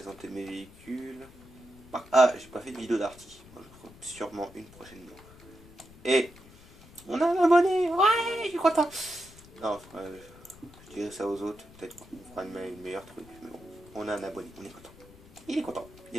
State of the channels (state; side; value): noise; left; rumble, 22 dB below the sound